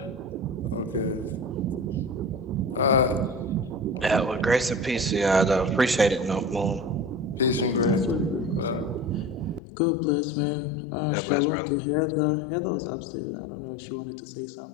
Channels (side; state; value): right; drops out; at 9.6 s